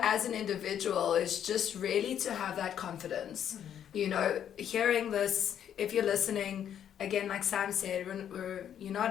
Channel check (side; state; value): right; quieter; 9.5 dB